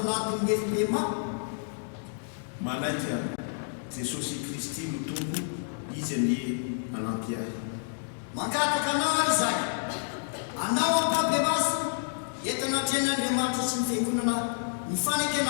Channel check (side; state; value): right; silent; digital silence